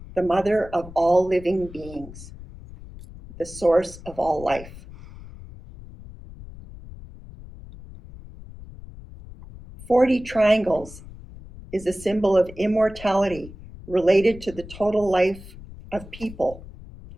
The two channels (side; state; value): left; noise; rumble, 16 dB below the sound